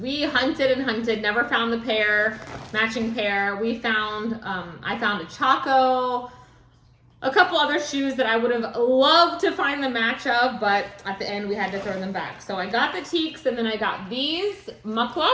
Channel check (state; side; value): identical; both; correlation 1.00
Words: hunted and hunted, never found the matching pair. We found, I found a Chaco, a couple other shoes that I would have loved to find the match of, but at the end we had to throw them back. So I got the teaks, and then I got these